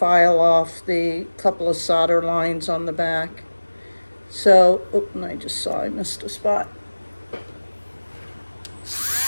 off the couple of solder lines on the back. So, and I just saw I missed a spot.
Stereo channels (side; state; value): both; inverted; correlation -1.00